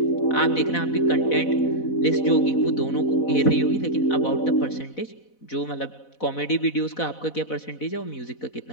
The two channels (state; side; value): late; right; 4.1 ms